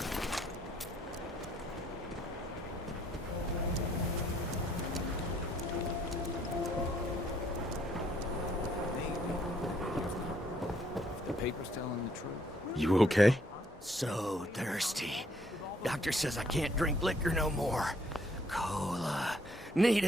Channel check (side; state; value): both; normal; correlation 0.67